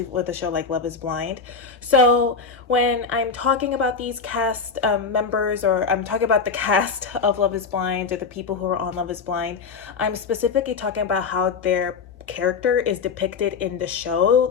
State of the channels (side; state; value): right; quieter; 5.2 dB